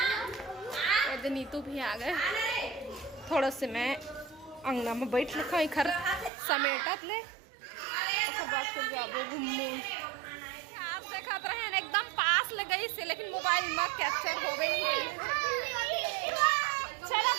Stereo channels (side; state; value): left; drops out; at 6.3 s